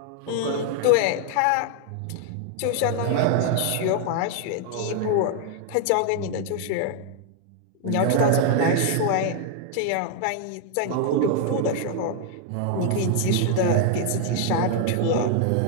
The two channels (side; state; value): both; different; correlation 0.00